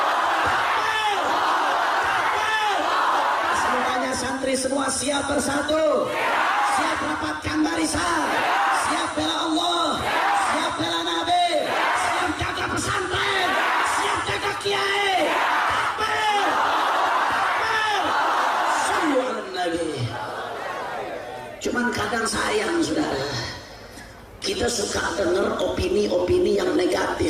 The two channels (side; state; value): both; identical; correlation 1.00